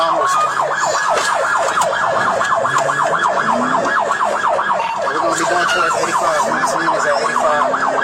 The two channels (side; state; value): both; identical; correlation 1.00